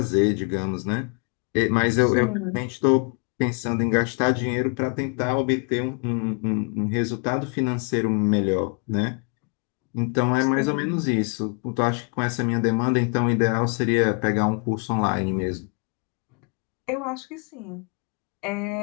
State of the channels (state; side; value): quieter; right; 37.8 dB